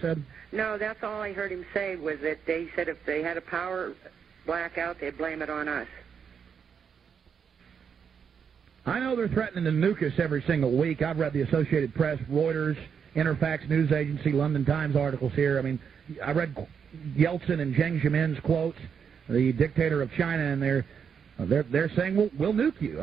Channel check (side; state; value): left; quieter; 7.0 dB